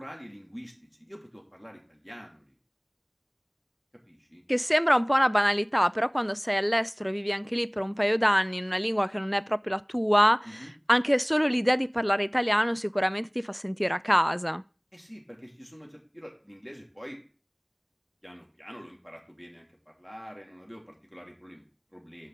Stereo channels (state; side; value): identical; both; correlation 1.00